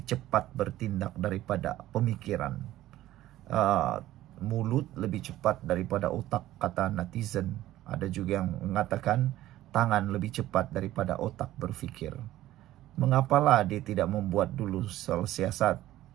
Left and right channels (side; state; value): left; quieter; 14.6 dB